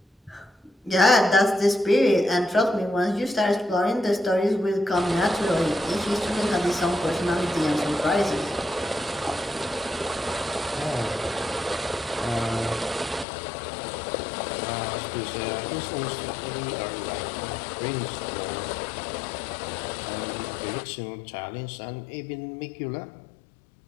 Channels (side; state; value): right; drops out; at 13.2 s